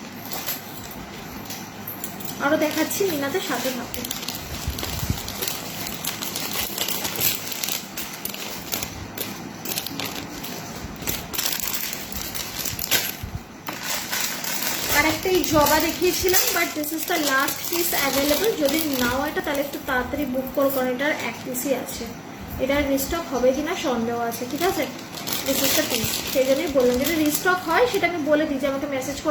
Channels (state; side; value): identical; both; correlation 1.00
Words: আরো দেখাচ্ছি মিনাতে, সাথে থাকো। আর একটা এই জবা দেখিয়েছিলাম, but this is the last piece available. যদি নাও এটা, তাহলে একটু তাড়াতাড়ি বুক করো, কারণ এটার এক পিসই আছে। এটার রিস্টক হবে কিনা সন্দেহ আছে, ঠিক আছে? দিস ইজ দ্য পিস, সেই জন্যই বললাম, যদি রিস্টক হয় সেটা আমি বলে দিই, যে আমাকে মেসেজ